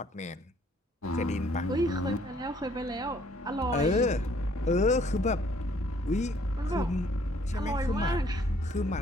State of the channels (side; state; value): both; normal; correlation 0.62